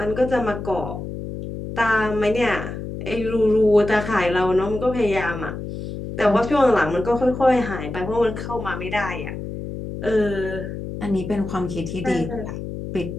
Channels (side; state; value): left; noise; hum, 7 dB below the sound